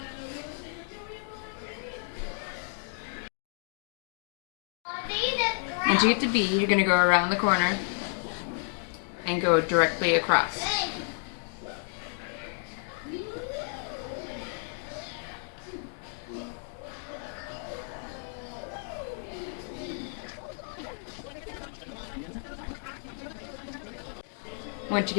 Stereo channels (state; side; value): silent; right; 57 dB below the other